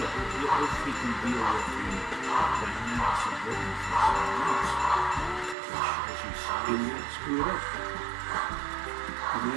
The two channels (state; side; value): drops out; left; at 5.6 s